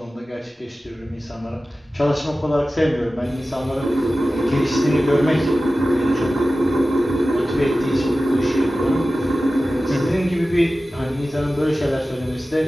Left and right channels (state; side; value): normal; both; correlation 0.95